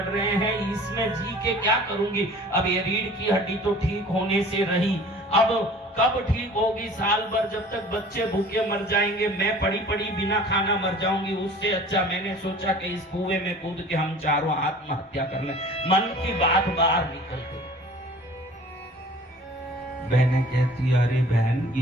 रहे हैं, इसमें जी के क्या करूंगी? अब ये रीढ़ की हड्डी तो ठीक होने से रही, अब कब ठीक होगी? साल भर जब तक बच्चे भूखे मर जाएंगे, मैं पड़ी पड़ी बिना खाना मर जाऊंगी। उससे अच्छा मैंने सोचा कि इस कुएं में कूद के हम चारों आत्महत्या कर लें। मन की बात बाहर निकल गई। बहनें कहती, अरे बहन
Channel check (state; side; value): normal; both; correlation 0.46